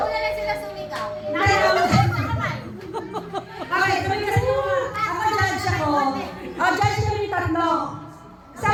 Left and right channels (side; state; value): both; identical; correlation 1.00